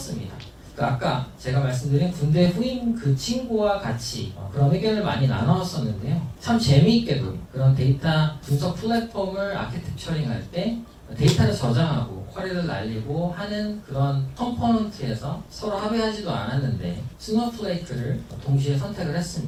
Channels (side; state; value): both; identical; correlation 1.00